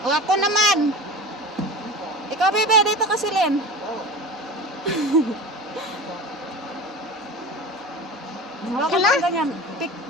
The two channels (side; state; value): both; normal; correlation 0.32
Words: O ako naman. Ikaw, bebe, dito kasi Len. Wala ka lang ganyan.